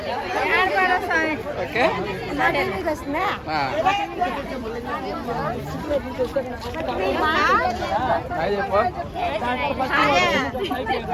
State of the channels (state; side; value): identical; both; correlation 1.00